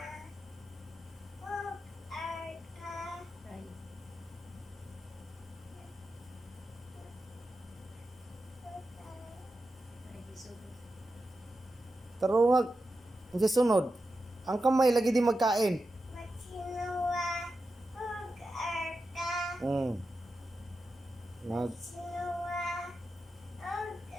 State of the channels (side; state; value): both; normal; correlation 0.90